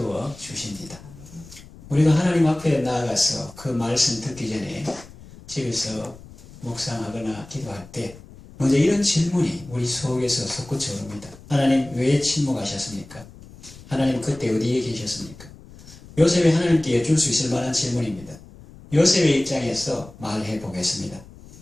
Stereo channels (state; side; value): noise; left; rumble, 20 dB below the sound